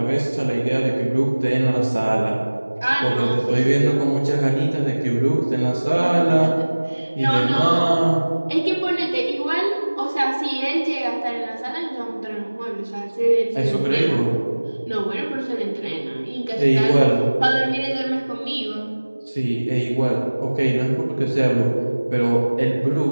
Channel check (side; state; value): both; inverted; correlation -1.00